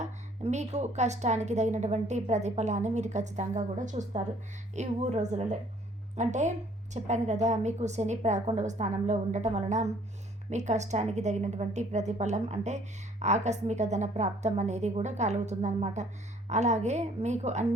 మీకు కష్టానికి తగినటువంటి ప్రతిఫలాన్ని మీరు ఖచ్చితంగా కూడా చూస్తారు ఈ 3 రోజులలో. అంటే చెప్పాను కదా, మీకు శని 11వ స్థానంలో ఉండటం వలన మీ కష్టానికి తగినటువంటి ప్రతిఫలం అంటే ఆకస్మిక ధన ప్రాప్తం అనేది కూడా కలుగుతుందన్నమాట. అలాగే మీకు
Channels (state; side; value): normal; both; correlation 0.59